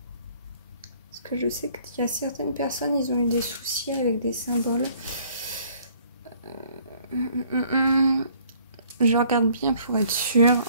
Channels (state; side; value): inverted; both; correlation -0.59